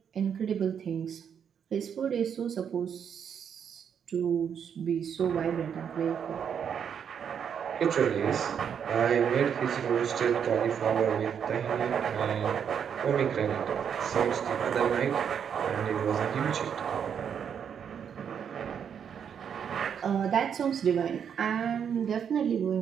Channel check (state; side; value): quieter; left; 7.8 dB